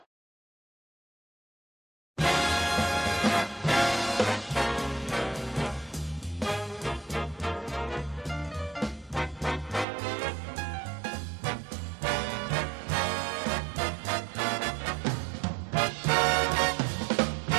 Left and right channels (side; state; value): left; drops out; at 9.9 s